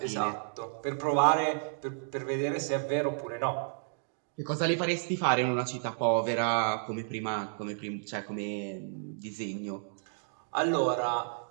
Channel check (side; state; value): left; silent; digital silence